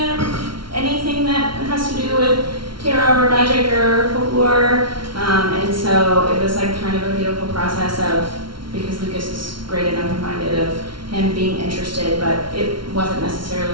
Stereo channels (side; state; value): left; late; 0.73 ms